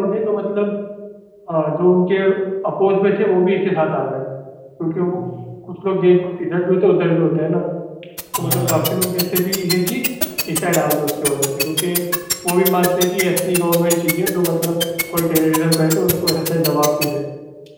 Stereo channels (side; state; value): both; identical; correlation 1.00